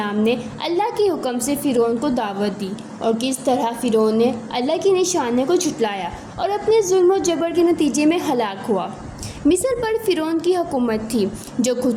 نے اللہ کے حکم سے فرعون کو دعوت دی اور کس طرح فرعون نے اللہ کی نشانیوں کو جھٹلایا اور اپنے ظلم و جبر کے نتیجے میں ہلاک ہوا۔ مصر پر فرعون کی حکومت تھی جو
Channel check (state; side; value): identical; both; correlation 1.00